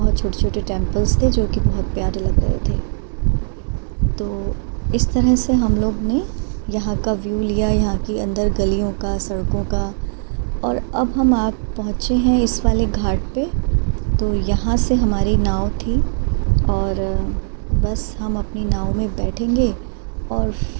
छोटे छोटे टेम्पल्स थे जो कि बहुत प्यारे लग रहे थे। तो इस तरह से हम लोग ने यहाँ का व्यू लिया, यहाँ की अंदर गलियों का, सड़कों का। और अब हम पहुँचे हैं इस वाले घाट पे। तो यहाँ से हमारी नाव थी और बस हम अपनी नाव में बैठेंगे और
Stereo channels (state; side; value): silent; left; 66 dB below the other